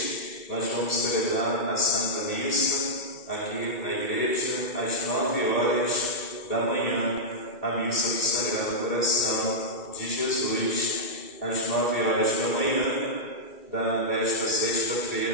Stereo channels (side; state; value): right; late; 1.8 ms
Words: nós vamos celebrar a Santa Missa aqui na igreja.